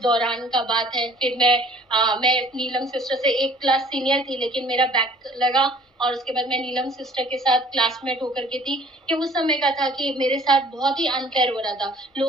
दौरान का बात है। फिर मैं नीलम सिस्टर से एक क्लास सीनियर थी, लेकिन मेरा बैक लगा, और उसके बाद मैं नीलम सिस्टर के साथ क्लासमेट होकर के थी। कि उस समय का था कि मेरे साथ बहुत ही अनफेयर हो रहा था,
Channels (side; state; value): both; normal; correlation 0.53